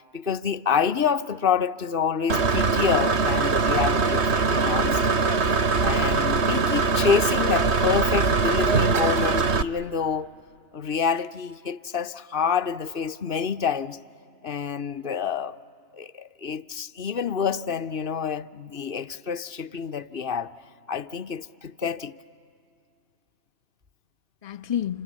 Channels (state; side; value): late; left; 2.6 ms